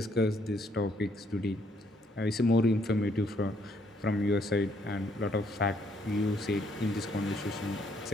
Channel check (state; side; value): normal; both; correlation 0.69